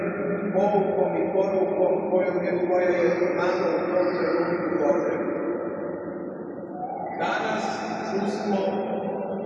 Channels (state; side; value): identical; both; correlation 1.00